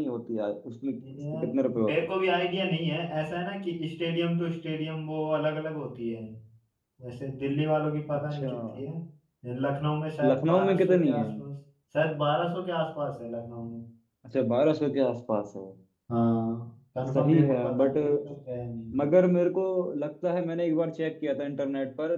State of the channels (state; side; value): identical; both; correlation 1.00